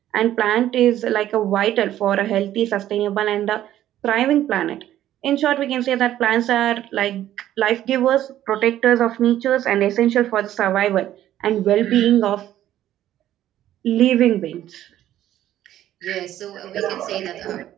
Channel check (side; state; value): left; quieter; 12.5 dB